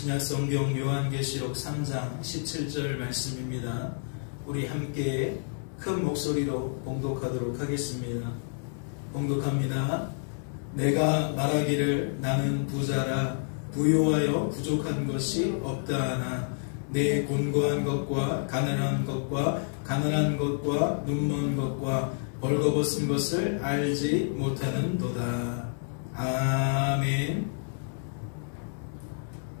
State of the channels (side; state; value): right; silent; digital silence